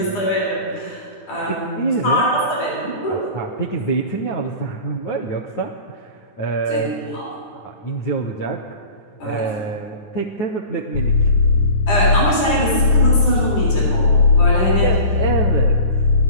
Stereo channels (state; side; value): late; right; 9.7 ms